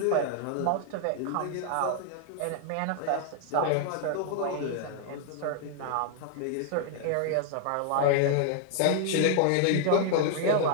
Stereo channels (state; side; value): different; both; correlation 0.00